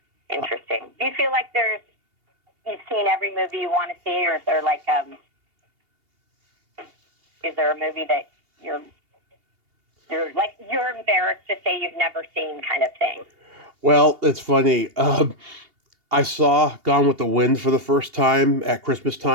interesting. Do you feel like you've seen every movie you want to see, or is there is there a movie that you're embarrassed to say you've never seen, kind of thing? Well, it's funny. I saw Gone with the Wind for the first time at Christmas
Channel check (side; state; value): left; late; 2.8 ms